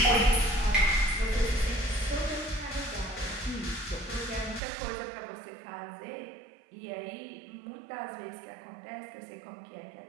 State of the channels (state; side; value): drops out; left; at 4.6 s